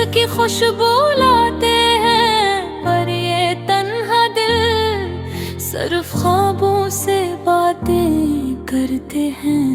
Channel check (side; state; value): both; identical; correlation 1.00